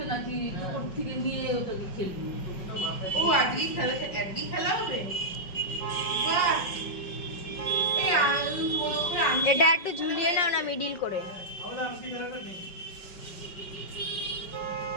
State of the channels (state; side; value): late; right; 5.4 ms